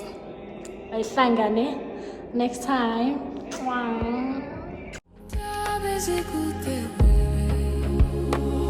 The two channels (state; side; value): identical; both; correlation 1.00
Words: Ayhlangane next time. Mwah.